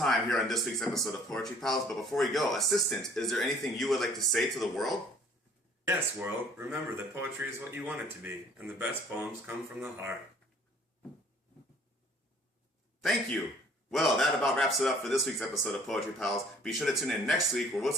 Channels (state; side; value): normal; both; correlation 0.56